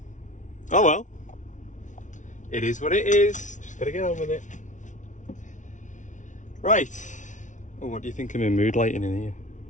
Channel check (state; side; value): late; right; 0.37 ms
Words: well. It is what it is. Just gotta get on with it. Right. Oh, what do you think of my mood lighting in here?